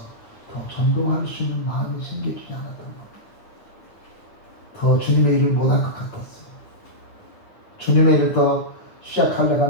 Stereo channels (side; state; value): right; late; 9.2 ms